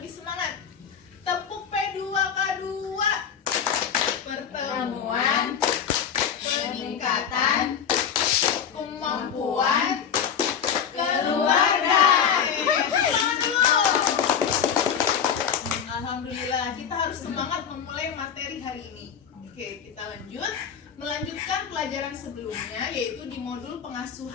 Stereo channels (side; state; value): right; quieter; 7.8 dB